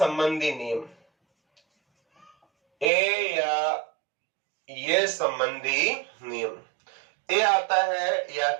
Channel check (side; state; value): left; drops out; at 2.9 s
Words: नियम, ए या ये संबंधी नियम, ए आता है या